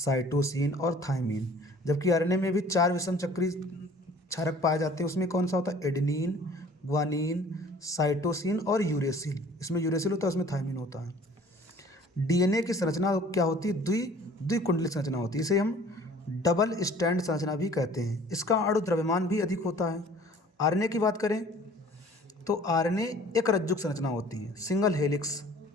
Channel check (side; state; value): both; normal; correlation 0.51